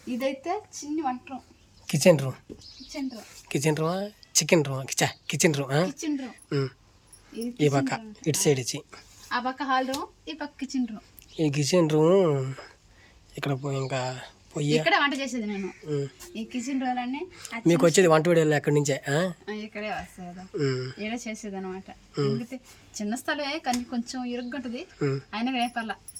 ఇదైతే చిన్న వంట రూమ్, కిచెన్ రూమ్. ఈ పక్క ఇటు సైడ్ ఇచ్చి ఆ పక్క హాల్ రూమ్, ఈ పక్క కిచెన్ రూమ్. ఈ కిచెన్ రూమ్ ఇక్కడ ఇంకా ఇక్కడ వంట చేసేది నేను. ఈ కిచెన్ రూమ్ అన్ని మీకు వచ్చేది వంట వీడియోలు ఎక్కడి నుంచే ఇక్కడే వస్తాయి కదా, ఇక్కడ చేసేది అనమాట. ఎందుకంటే చిన్న స్థలమే కానీ కొంచెం ఇరుగ్గుంటది, అయినా ఏ పర్లా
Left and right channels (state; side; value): identical; both; correlation 1.00